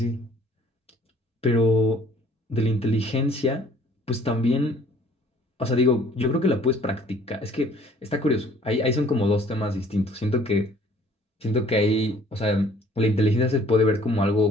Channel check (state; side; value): normal; both; correlation 0.55